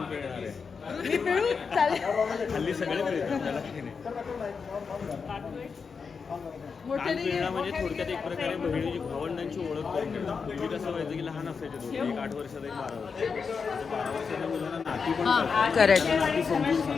मी पिळू चालेल. म्हणजे थोडक्यात एक प्रकारे बहिणीची भावंडांची ओळख करून देतात. पूर्वी कसं व्हायचं की लहान असायचे दोघे, एक 8 वर्षाचा एक 12 वर्षाचा. 12 वर्षाच्या मुलांना नाती पण करतात. करेक्ट.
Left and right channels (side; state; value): right; quieter; 5.5 dB